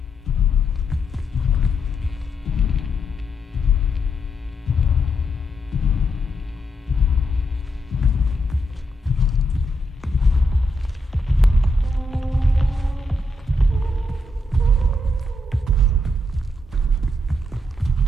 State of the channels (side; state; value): both; normal; correlation 0.80